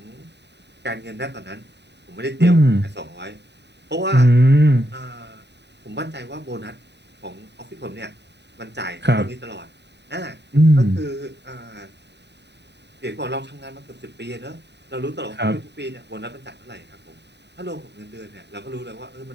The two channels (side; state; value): left; late; 0.50 ms